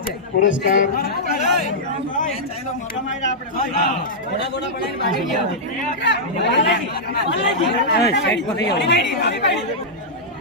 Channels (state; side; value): normal; both; correlation -0.09